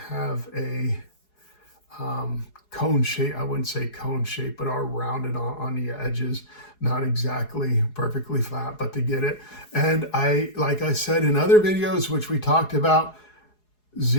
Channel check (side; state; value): right; late; 4.8 ms